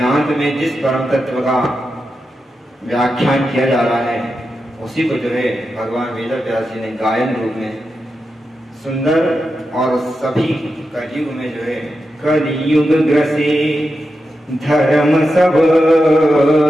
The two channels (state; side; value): normal; both; correlation 0.89